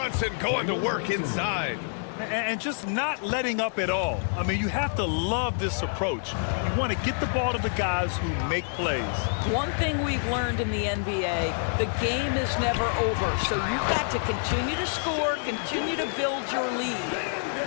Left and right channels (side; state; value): right; silent; digital silence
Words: going to work inside. And just not letting up at all. I mean, you have to love this approach. You want to get the ball to the guys who make plays. One thing we've learned in the NBA, the game is never over. So you've got to continue to score, continue to build your